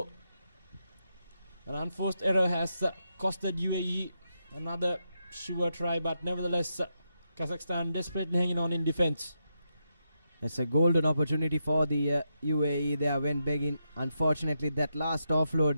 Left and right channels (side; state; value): both; inverted; correlation -0.85